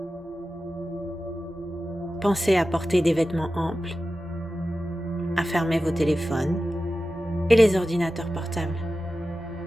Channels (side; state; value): both; normal; correlation 0.93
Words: Pensez à porter des vêtements amples, à fermer vos téléphones et les ordinateurs portables.